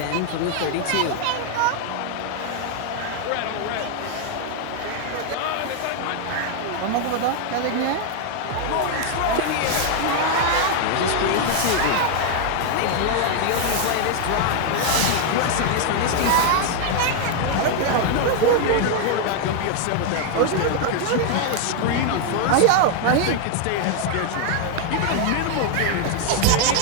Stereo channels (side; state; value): both; different; correlation 0.00